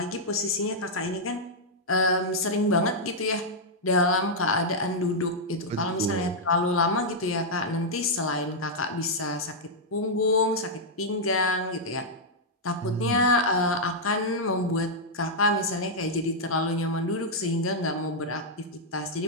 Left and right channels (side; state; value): both; normal; correlation -0.05